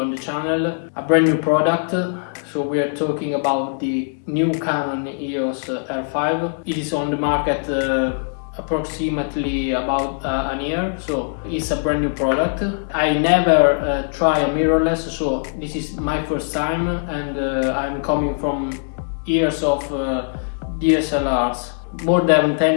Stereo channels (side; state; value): right; silent; digital silence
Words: the channel a brand new product. So we are talking about the new Canon Eos R5. It is on the market approximately about an year, so it's a brand new product. I never try a mirrorless, so this is my first time, and I'm coming from years of DSLRs, more than